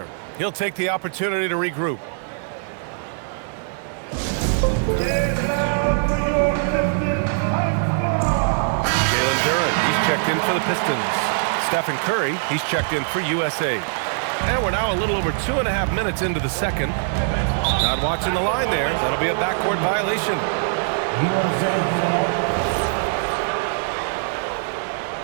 He'll take the opportunity to regroup. Jalen Duren, he's checked in for the Pistons. Stephen Curry, he's checked in for USA. And we're now a little over 2.5 minutes into the second. Not watching the line there. That'll be a backcourt violation. USA ball.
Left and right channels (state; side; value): silent; left; digital silence